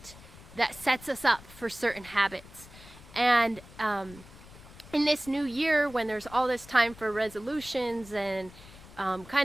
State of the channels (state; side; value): noise; left; rumble, 19 dB below the sound